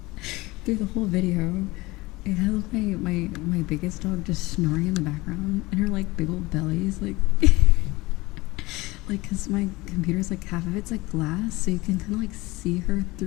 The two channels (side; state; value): right; quieter; 21.4 dB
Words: through the whole video, it has my biggest dog just snoring in the background, and her like big old bellies like. Like, cause my computer's like half of it's like glass, so you can kind of like see her